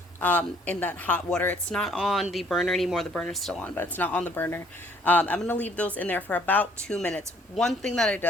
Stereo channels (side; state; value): both; normal; correlation 0.61